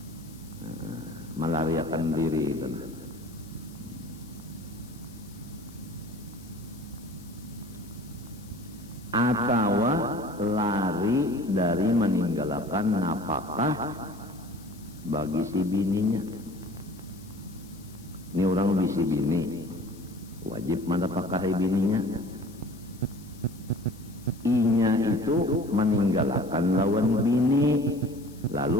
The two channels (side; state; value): left; noise; hiss, 23 dB below the sound